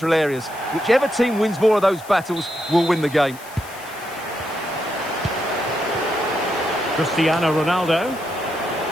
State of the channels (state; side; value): noise; left; hiss, 19 dB below the sound